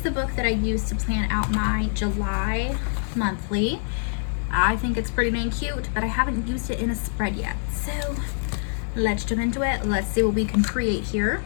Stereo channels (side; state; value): right; silent; 62 dB below the other